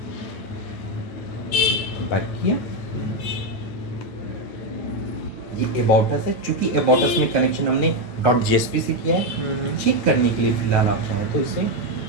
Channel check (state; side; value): late; right; 9.0 ms